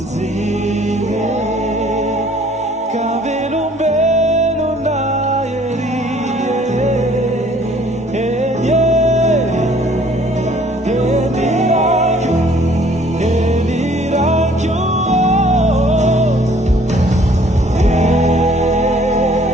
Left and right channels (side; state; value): both; normal; correlation 0.57